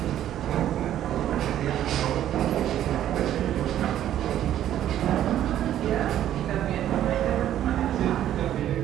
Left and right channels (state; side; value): quieter; left; 11.6 dB